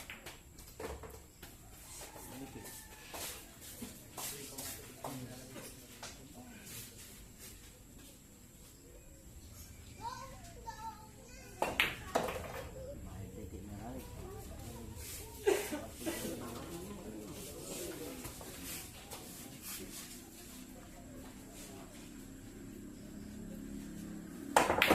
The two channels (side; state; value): both; identical; correlation 1.00